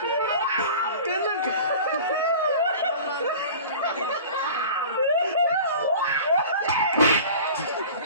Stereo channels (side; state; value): both; inverted; correlation -0.40